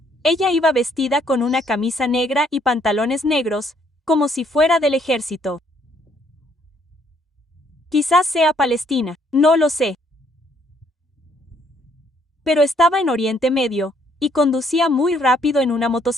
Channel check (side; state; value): both; normal; correlation 0.67